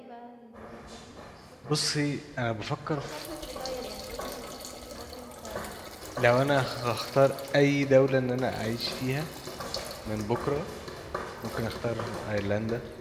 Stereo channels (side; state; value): both; identical; correlation 1.00